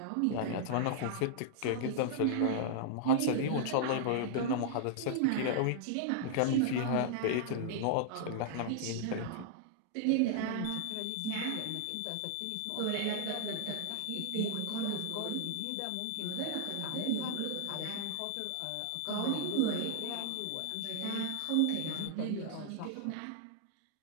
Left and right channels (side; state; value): both; different; correlation -0.01